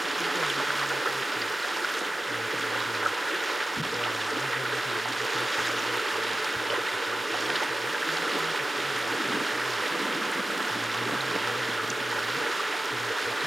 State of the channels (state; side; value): normal; both; correlation 0.94